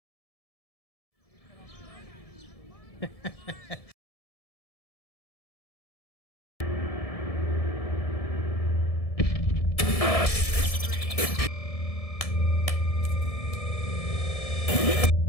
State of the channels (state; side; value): late; right; 1.7 ms